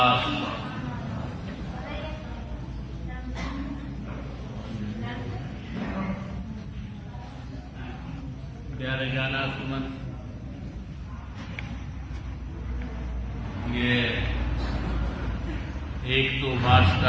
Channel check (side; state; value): both; identical; correlation 1.00